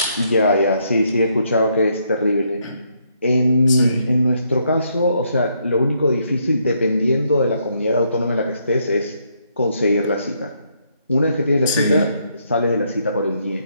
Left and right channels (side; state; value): both; inverted; correlation -0.74